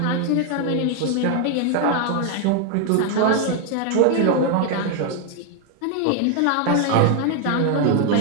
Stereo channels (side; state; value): both; different; correlation 0.00